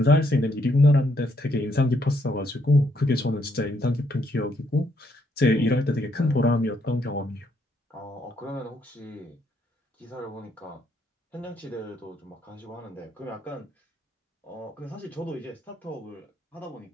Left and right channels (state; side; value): normal; both; correlation 0.73